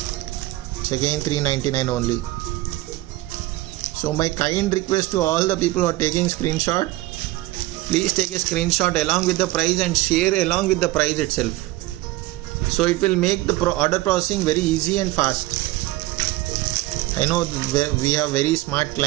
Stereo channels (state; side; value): quieter; left; 18.1 dB